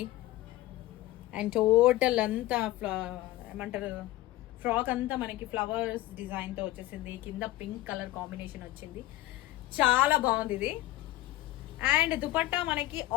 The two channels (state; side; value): quieter; right; 16.3 dB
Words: అండ్ టోటల్ అంతా ఏమంటారు, ఫ్రాక్ అంతా మనకి ఫ్లవర్స్ డిజైన్ తో వచ్చేసింది. కింద పింక్ కలర్ కాంబినేషన్ వచ్చింది, చాలా బాగుంది ఇది. అండ్ దుపట్టా మనకి